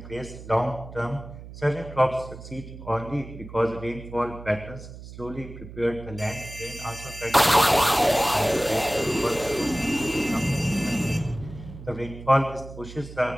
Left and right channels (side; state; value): right; noise; hum, 14 dB below the sound